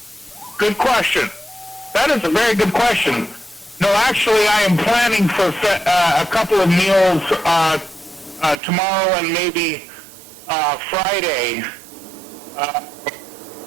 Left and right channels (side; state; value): left; drops out; at 8.6 s